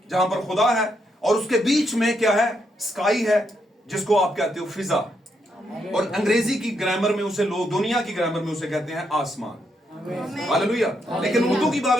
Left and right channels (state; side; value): normal; both; correlation 0.79